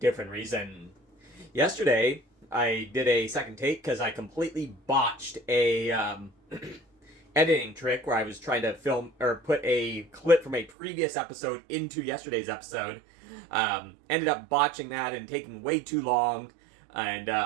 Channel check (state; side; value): drops out; left; at 10.7 s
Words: reason. Yesterday I did a second take because I completely botched a editing trick where I was trying to film or put a clip from a previous episode into yesterday's episode. Ended up botching that and taking way too long,